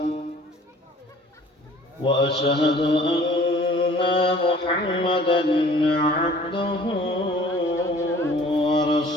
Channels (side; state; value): both; normal; correlation 0.50